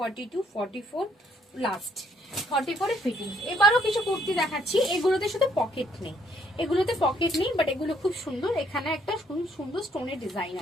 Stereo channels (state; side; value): normal; both; correlation 0.68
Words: 44 লাস্ট 44 ফিটিং। এবারও কিছু কুর্তি দেখাচ্ছি, এগুলোতে শুধু পকেট নেই, এগুলোতে পকেট নেই, বাট এগুলো খুব সুন্দর। এখানে একটা সুন্দর স্টোনের ডিজাইন